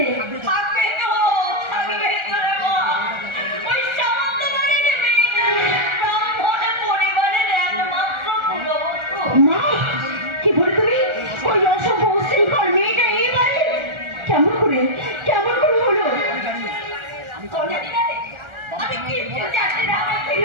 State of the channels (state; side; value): late; left; 1.4 ms